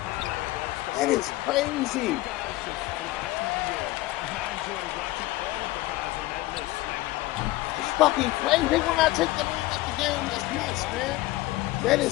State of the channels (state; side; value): quieter; right; 18.1 dB